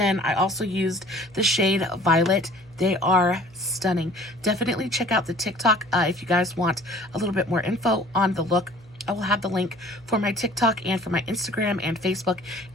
I also used the shade Violet. They are stunning. Definitely check out the TikTok if you guys want a little bit more info on the look. I will have the link for my TikTok and for my Instagram and Facebook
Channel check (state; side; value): noise; left; hum, 27 dB below the sound